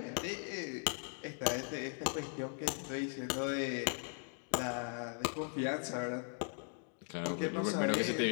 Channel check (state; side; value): silent; right; 52 dB below the other